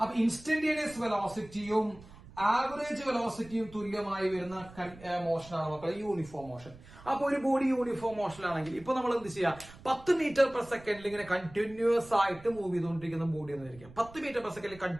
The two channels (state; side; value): noise; right; rumble, 20 dB below the sound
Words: ഇൻസ്റ്റന്റേനിയസ് വെലോസിറ്റിയും ആവറേജ് വെലോസിറ്റിയും തുല്യമായി വരുന്ന മോഷനാണ് മക്കളെ യൂണിഫോം മോഷൻ. അപ്പൊ ഒരു ബോഡി യൂണിഫോം മോഷനിലാണെങ്കിൽ ഇപ്പൊ നമ്മൾ എന്ത് ചെയ്യാം? 10 മീറ്റർ പെർ സെക്കൻഡിൽ ഇങ്ങനെ കണ്ടിന്യൂസ് ആയിട്ട് മൂവ് ചെയ്തുകൊണ്ടിരിക്കുന്ന ബോഡി എന്ന് വിചാരിക്കാം. 10 മീറ്റർ പെർ സെക്കൻഡിൽ